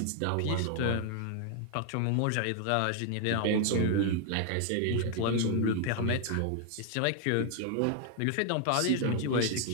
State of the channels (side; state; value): both; different; correlation 0.00